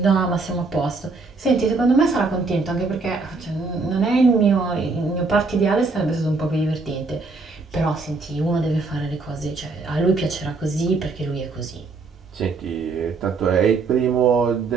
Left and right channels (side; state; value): left; quieter; 4.0 dB